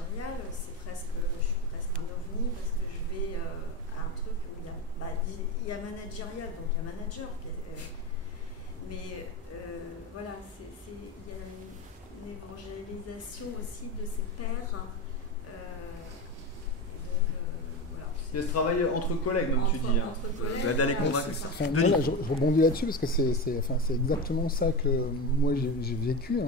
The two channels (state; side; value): normal; both; correlation 0.21